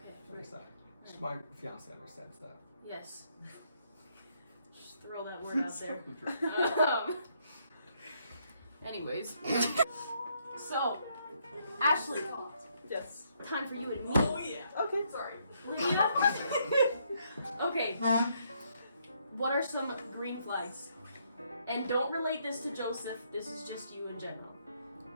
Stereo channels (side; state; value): both; inverted; correlation -0.72